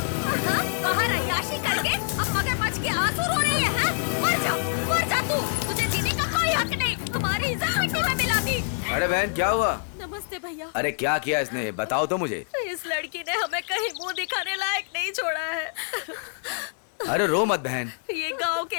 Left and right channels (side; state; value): right; silent; digital silence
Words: बाहर अय्याशी करके अब मगरमच्छ के आंसू रो रही है। मर जा तू, तुझे जीने का कोई हक नहीं। हमारी इज्जत मिट्टी में मिला दी। अरे बहन क्या हुआ? नमस्ते भैया। अरे क्या किया इसने, बताओ तो मुझे। इस लड़की ने हमें कहीं मुंह दिखाने लायक नहीं छोड़ा है। अरे रो मत बहन। ये गांव के